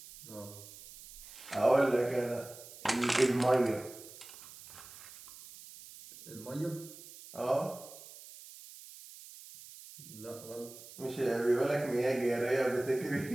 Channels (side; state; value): right; noise; hiss, 17 dB below the sound